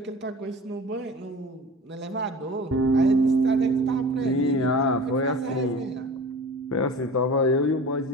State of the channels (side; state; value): both; normal; correlation 0.38